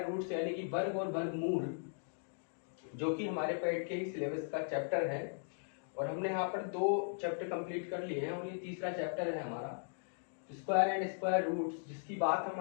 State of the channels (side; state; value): right; silent; digital silence